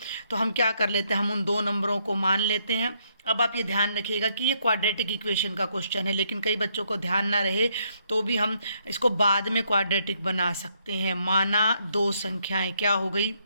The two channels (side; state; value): both; inverted; correlation -0.73